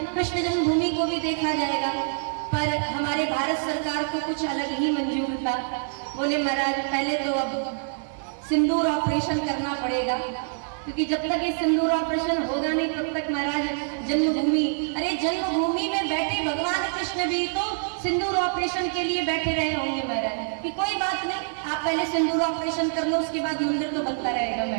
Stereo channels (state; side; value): silent; left; digital silence